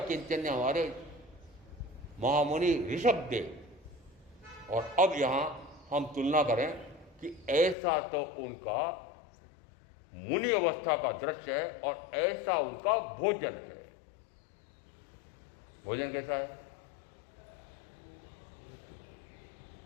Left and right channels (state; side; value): drops out; right; at 7.8 s